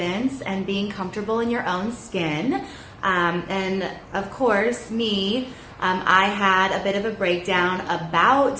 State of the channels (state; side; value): identical; both; correlation 1.00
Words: and being comfortable in your own skin. And of course, I had a bit of a breakdown